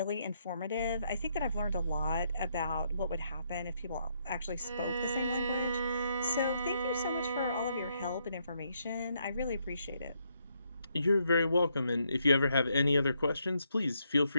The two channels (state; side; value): inverted; both; correlation -0.76